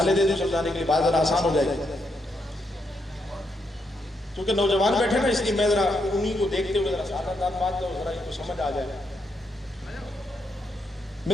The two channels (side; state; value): both; normal; correlation 0.79